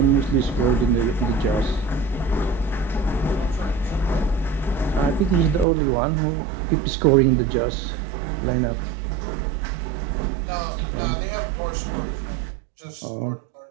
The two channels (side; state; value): left; drops out; at 5.7 s